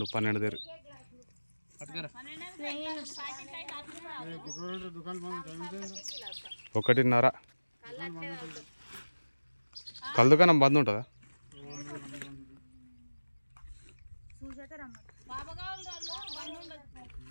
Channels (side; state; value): both; inverted; correlation -1.00